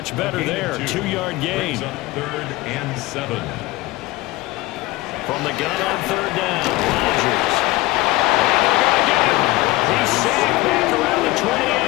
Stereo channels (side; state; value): right; quieter; 19.6 dB